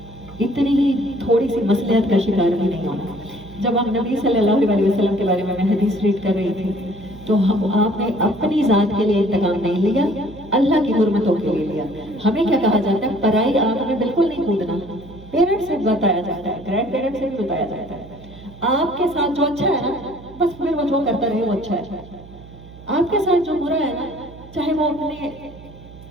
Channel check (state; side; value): noise; right; hum, 19 dB below the sound